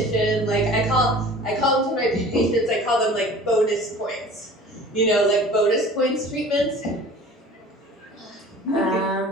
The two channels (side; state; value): both; normal; correlation 0.44